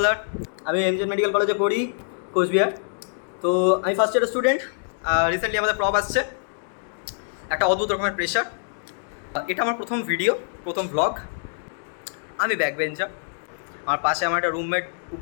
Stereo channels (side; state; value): right; silent; digital silence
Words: আমি এমজেড মেডিকেল কলেজে পড়ি, কোচবিহার। তো আমি ফার্স্ট ইয়ারের স্টুডেন্ট। রিসেন্টলি আমাদের প্রব আসছে, একটা অদ্ভুত রকমের প্রেশার। এটা আমার প্রথম ভিডিও, প্রথম ভ্লগ। আমি ব্যাক বেঞ্চার, আমার পাশে আমার একটা রুমমেট